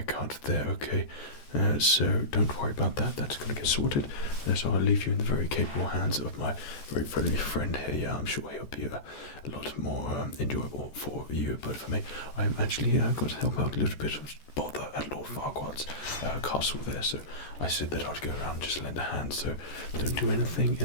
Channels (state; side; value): late; right; 14 ms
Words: there, okay? So don't worry about that. That's going to get sorted. So I'll leave you in the very capable hands of my very friendly friend here. Yeah, I'm sure he'll be a lot more enjoyable for you. But for me, I'm actually going to help out a little bit of bother at Lord Farquaad's castle there. So I said that I'd go around and just lend a hand. So don't do anything